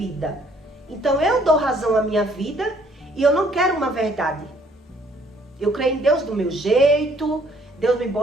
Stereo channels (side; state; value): both; normal; correlation 0.62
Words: então eu dou razão à minha vida e eu não quero uma verdade. Eu creio em Deus do meu jeito, Deus me